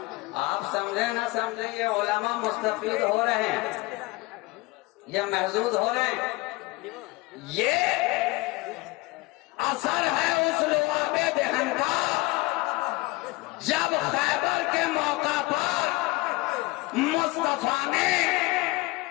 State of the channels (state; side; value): quieter; right; 22.5 dB